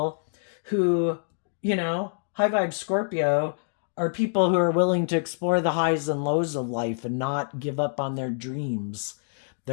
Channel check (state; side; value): silent; right; digital silence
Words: who, high vibe Scorpio, are people who are willing to explore the highs and lows of life and not give up on their dreams.